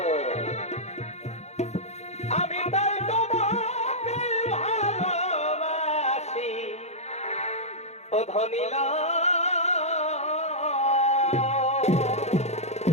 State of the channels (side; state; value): right; late; 0.32 ms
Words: আমি তাই তোমাকে ভালোবাসি ও ধনীলা